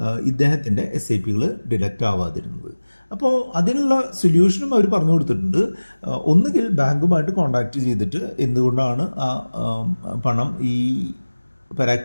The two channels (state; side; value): inverted; both; correlation -1.00